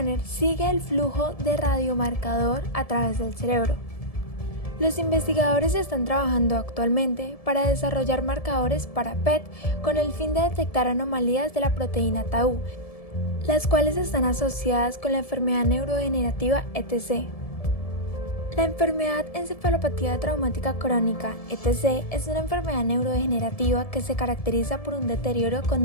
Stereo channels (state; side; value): late; right; 1.7 ms